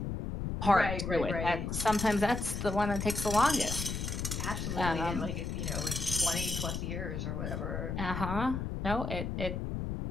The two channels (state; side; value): noise; left; rumble, 3 dB below the sound